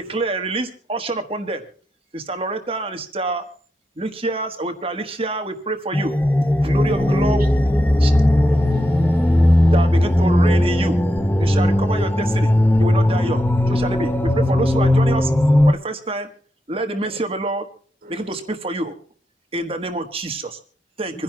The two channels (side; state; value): both; normal; correlation 0.86